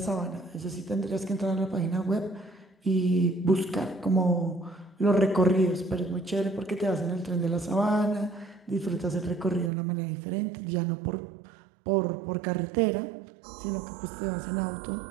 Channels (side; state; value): left; drops out; at 9.7 s